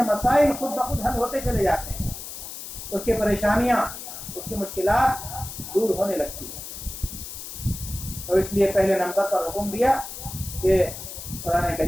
مسائل خود بخود حل ہوتے چلے جاتے ہیں، اس کی پریشانیاں، اس کی مشکلات دور ہونے لگتی ہیں۔ تو اس لیے پہلے نمبر پر حکم دیا کہ قرآن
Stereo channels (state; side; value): noise; left; hiss, 10 dB below the sound